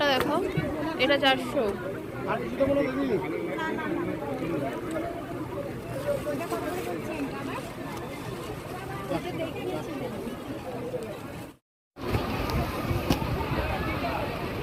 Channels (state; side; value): identical; both; correlation 1.00